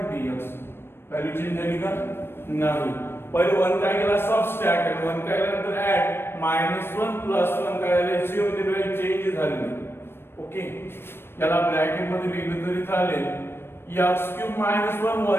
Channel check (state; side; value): late; right; 0.11 ms